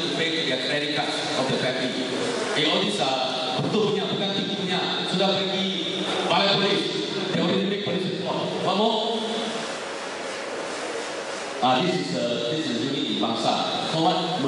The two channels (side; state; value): both; identical; correlation 1.00